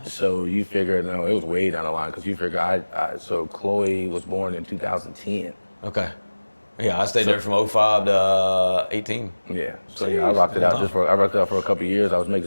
So you figured, no, it was way down the line because you figure so Chloe was born in 2010. Okay. Yeah, I stayed there from 2005 to 18. Yeah. So I rocked it out for a couple of years. I was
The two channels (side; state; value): both; inverted; correlation -1.00